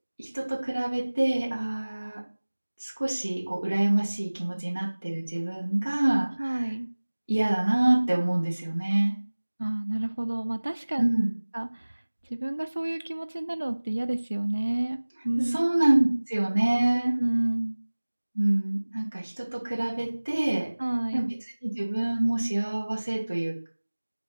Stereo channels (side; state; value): both; inverted; correlation -1.00